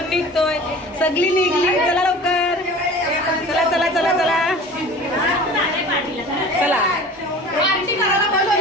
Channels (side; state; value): both; normal; correlation 0.41